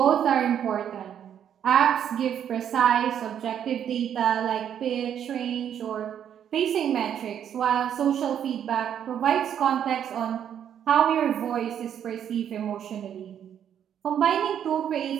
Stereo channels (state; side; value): quieter; left; 9.3 dB